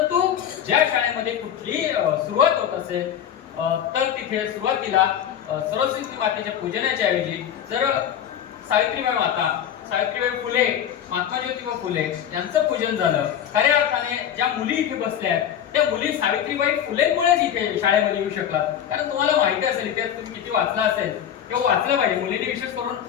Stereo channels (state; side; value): quieter; right; 9.6 dB